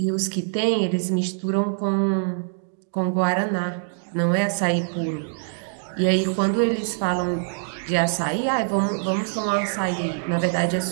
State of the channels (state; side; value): silent; left; digital silence